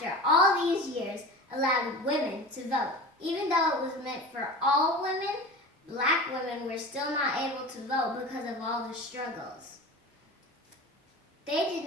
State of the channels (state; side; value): normal; both; correlation 0.33